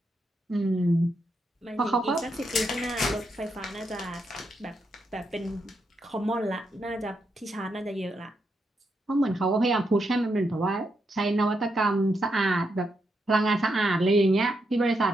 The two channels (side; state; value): both; normal; correlation 0.82